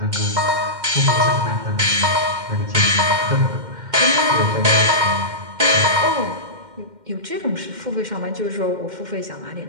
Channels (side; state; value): left; late; 2.1 ms